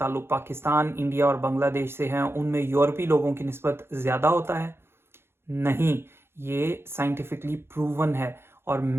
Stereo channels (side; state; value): left; late; 0.12 ms